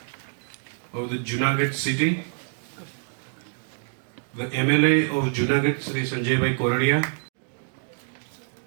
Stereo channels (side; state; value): left; silent; digital silence